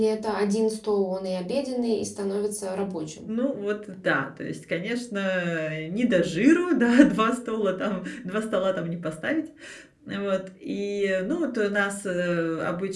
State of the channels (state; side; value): identical; both; correlation 1.00